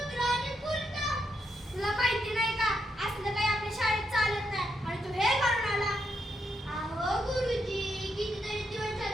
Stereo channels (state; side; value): normal; both; correlation 0.81